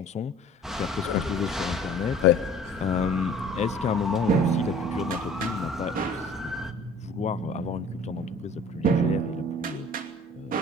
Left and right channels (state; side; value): normal; both; correlation 0.49